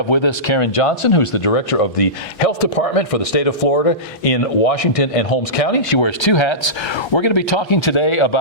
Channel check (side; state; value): both; normal; correlation -0.18